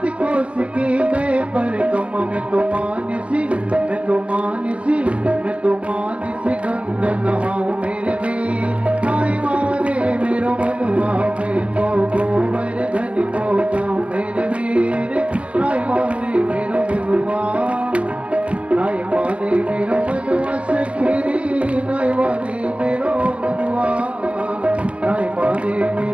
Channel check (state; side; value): late; left; 0.062 ms